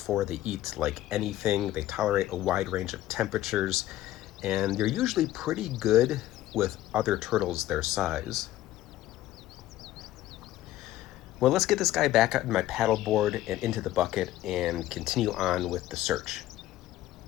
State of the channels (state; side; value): quieter; right; 14.5 dB